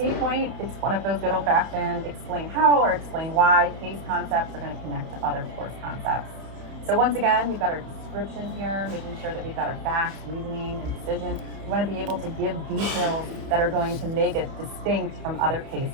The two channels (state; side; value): late; left; 31 ms